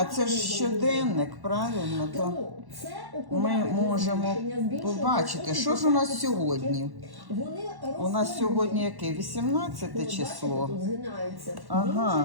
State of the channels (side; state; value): left; late; 1.1 ms